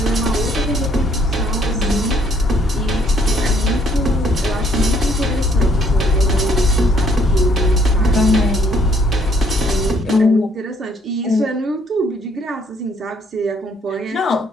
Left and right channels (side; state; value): both; normal; correlation 0.65